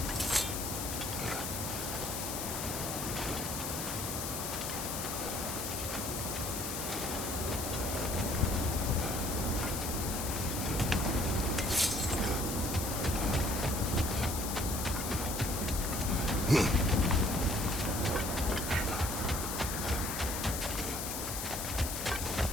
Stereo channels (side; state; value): left; noise; hiss, 4 dB below the sound